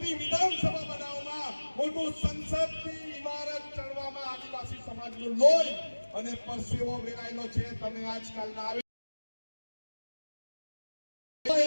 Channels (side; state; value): both; inverted; correlation -1.00